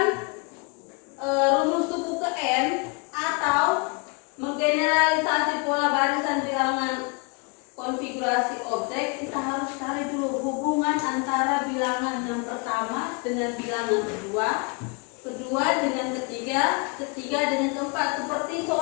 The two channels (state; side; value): quieter; right; 32.6 dB